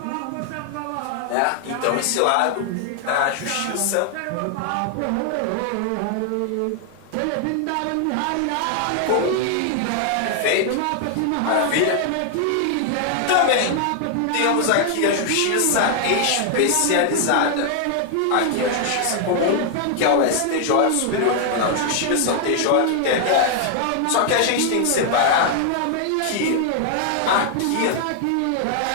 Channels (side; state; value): both; different; correlation 0.00